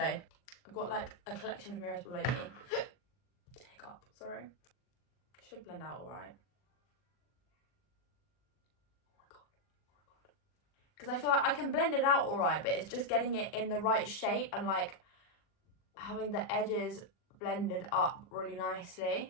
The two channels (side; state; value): right; late; 40 ms